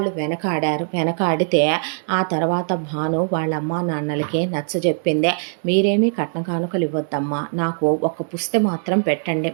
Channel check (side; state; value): left; silent; 65 dB below the other